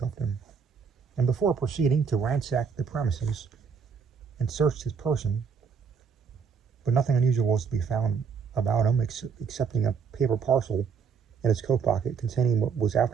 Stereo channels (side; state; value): left; quieter; 6.2 dB